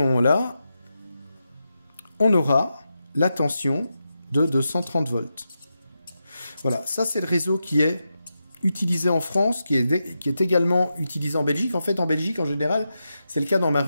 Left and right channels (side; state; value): both; inverted; correlation -0.88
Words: moment-là, on aura la tension de 230 volts. Voilà, ça c'est le réseau qui est utilisé en France, qui est également utilisé en Belgique. En fait, en Belgique, en général, c'est le cas dans ma